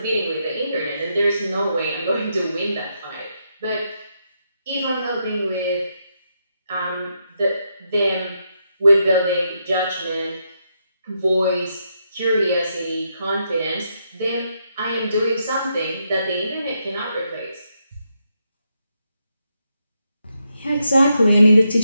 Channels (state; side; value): inverted; both; correlation -0.81